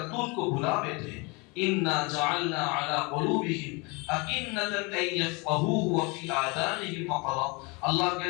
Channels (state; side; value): quieter; right; 28.3 dB